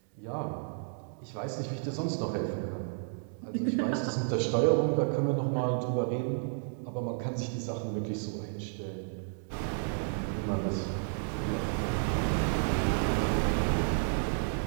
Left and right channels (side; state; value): left; silent; digital silence